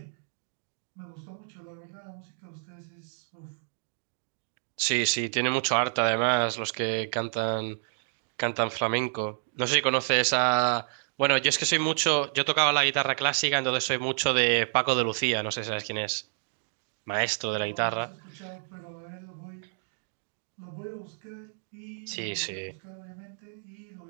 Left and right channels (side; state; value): left; silent; digital silence